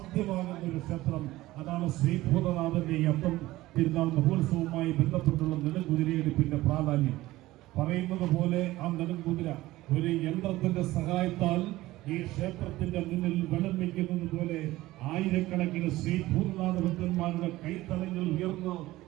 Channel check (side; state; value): left; quieter; 17.4 dB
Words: ഒരു ക്ഷേത്രം. അതാണ് ശ്രീ ഭൂതനാഥന്റെ അന്തം തിരുനാൾ മഹോത്സവവുമായി ബന്ധപ്പെട്ടുള്ള നെടുംകുതിരയെടുപ്പിന്റെ പ്രാധാന്യം. പറയുന്നത് പോലെ ആ നെടുംകുതിര ഒരു യന്ത്രത്തിന്റെ സഹായത്താൽ ഈ ക്ഷേത്രത്തിന്റെ മുന്നിൽ വെള്ളം വയ്ക്കുന്നത് പോലെ ആയിരക്കണക്കിന് ശ്രീ ഭൂതനാഥ ഭക്തന്മാരുടെ കൈത്തലങ്ങൾ ഉയർന്ന്